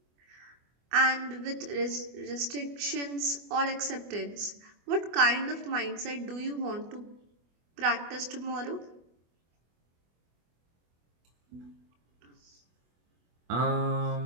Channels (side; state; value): left; late; 24 ms